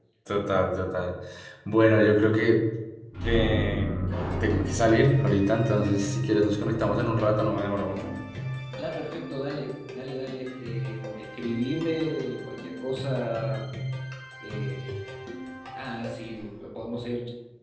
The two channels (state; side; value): identical; both; correlation 1.00